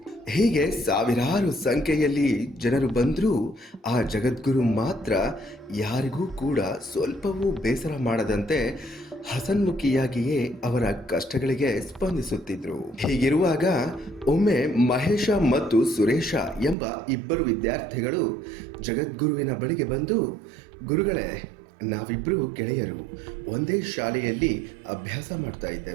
ಹೀಗೆ ಸಾವಿರಾರು ಸಂಖ್ಯೆಯಲ್ಲಿ ಜನರು ಬಂದರೂ ಆ ಜಗದ್ಗುರು ಮಾತ್ರ ಯಾರಿಗೂ ಕೂಡ ಸ್ವಲ್ಪವೂ ಬೇಸರ ಮಾಡದಂತೆ ಹಸನ್ಮುಖಿಯಾಗಿಯೇ ಅವರ ಕಷ್ಟಗಳಿಗೆ ಸ್ಪಂದಿಸುತ್ತಿದ್ರು. ಹೀಗಿರುವಾಗ ಒಮ್ಮೆ ಮಹೇಶ ಮತ್ತು ಸುರೇಶ ಎಂಬ ಇಬ್ಬರು ವಿದ್ಯಾರ್ಥಿಗಳು ಜಗದ್ಗುರುವಿನ ಬಳಿಗೆ ಬಂದು, ಗುರುಗಳೇ, ನಾವಿಬ್ಬರು ಗೆಳೆಯರು ಒಂದೇ ಶಾಲೆಯಲ್ಲಿ ಅಭ್ಯಾಸ ಮಾಡ್ತಾ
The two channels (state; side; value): drops out; left; at 16.8 s